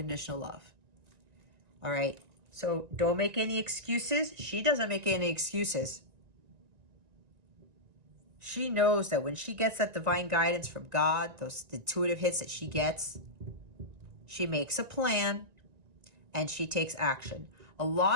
love. All right? So don't make any excuses. She doesn't make any excuses. She knows that when she gets that divine guidance from God, those intuitive hits that she gets, she makes a plan and she takes action. A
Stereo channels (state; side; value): late; left; 1.9 ms